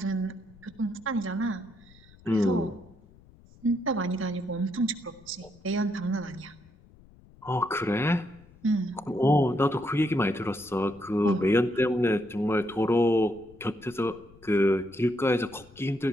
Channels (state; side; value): noise; left; rumble, 25 dB below the sound